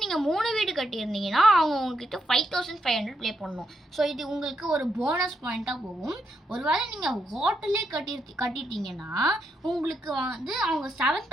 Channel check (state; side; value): normal; both; correlation 0.80